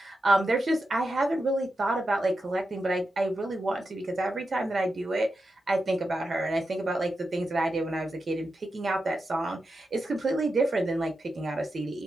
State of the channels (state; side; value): normal; both; correlation 0.89